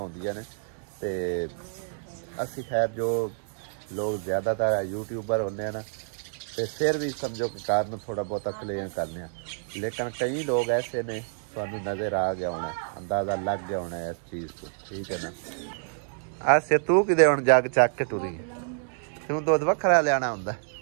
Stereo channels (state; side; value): silent; left; digital silence